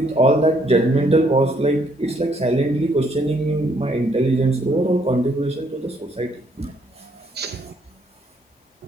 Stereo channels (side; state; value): both; normal; correlation 0.68